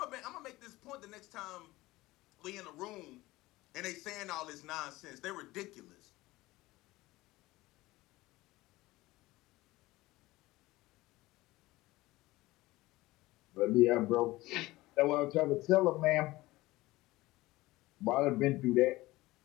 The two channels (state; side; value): quieter; right; 19.0 dB